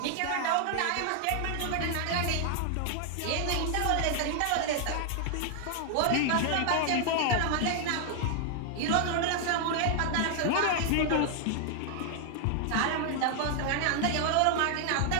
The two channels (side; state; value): both; different; correlation 0.00